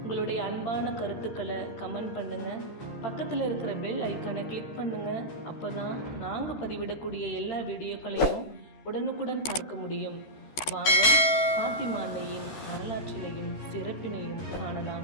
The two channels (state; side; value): late; right; 14 ms